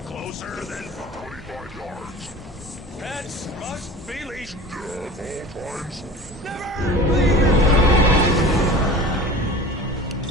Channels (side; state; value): both; normal; correlation 0.38